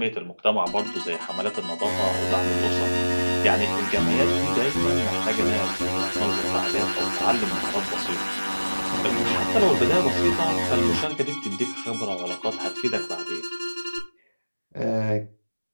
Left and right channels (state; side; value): inverted; both; correlation -1.00